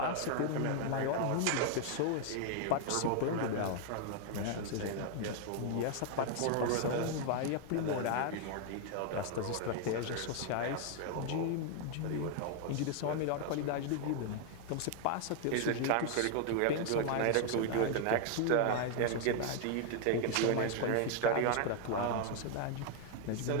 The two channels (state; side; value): different; both; correlation 0.00